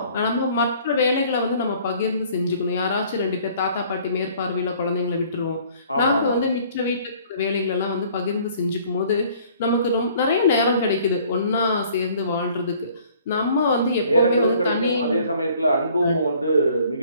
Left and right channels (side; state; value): both; inverted; correlation -0.56